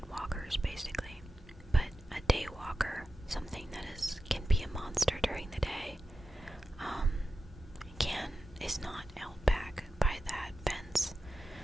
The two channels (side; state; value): both; normal; correlation 0.92